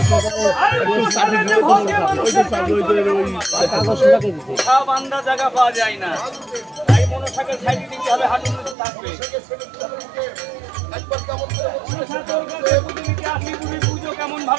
বান্দা জায়গা পাওয়া যায় না তাই মনসাকে সাইডে দিতে হবে হাঁটুর মতো থাকবে পুজো কেমন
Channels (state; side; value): drops out; left; at 8.8 s